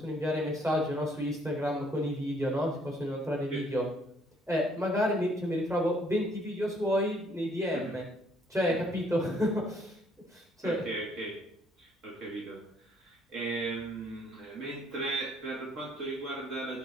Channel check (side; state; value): both; normal; correlation 0.65